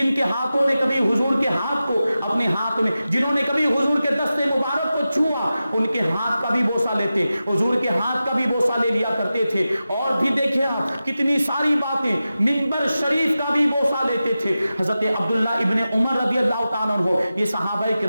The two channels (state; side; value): inverted; both; correlation -0.93